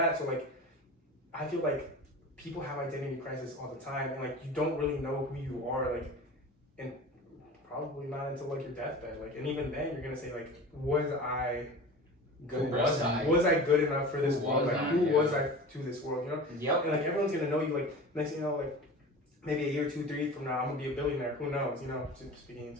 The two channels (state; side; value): normal; both; correlation 0.35